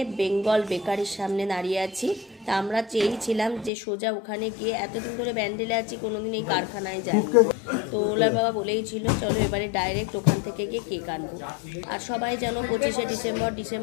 বেঙ্গল বেকারির সামনে দাঁড়িয়ে আছি। তা আমরা চেয়েছিলাম যে সোজা ওখানে গিয়ে, এতদিন ধরে ব্যান্ডেলে আছি, কোনোদিন এই কারখানায় যাইনি। তো ওলার বাবা বলেই ছিল চলো এবারে ডাইরেক্ট ওখান থেকে গিয়ে কেক আনবো। আর সবাই যেন 25শে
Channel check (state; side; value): drops out; right; at 3.7 s